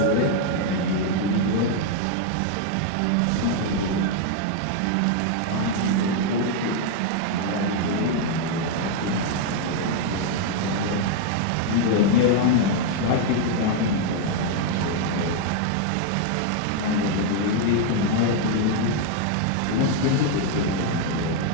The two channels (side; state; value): both; different; correlation 0.00